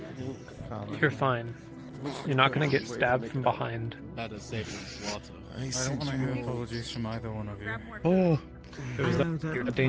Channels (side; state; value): both; identical; correlation 1.00